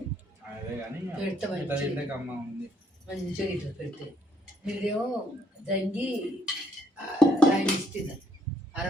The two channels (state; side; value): normal; both; correlation 0.69